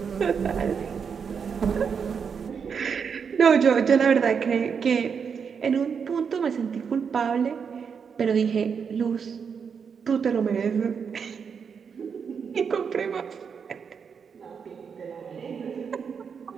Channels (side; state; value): left; quieter; 6.5 dB